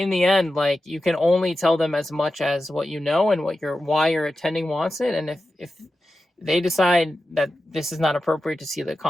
the end, like, you can only tell them as much as what you know and why your attending wants it. And if they decide that this is not appropriate to see the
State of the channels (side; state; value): both; normal; correlation 0.92